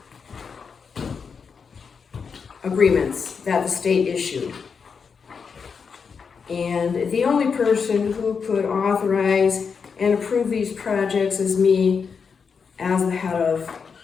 agreements that the state issued. And the only person who could authorize and approve these projects is me as the head of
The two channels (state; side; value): quieter; right; 5.8 dB